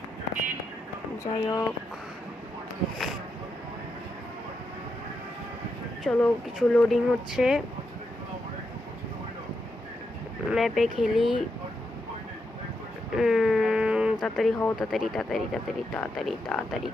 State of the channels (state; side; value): normal; both; correlation 0.84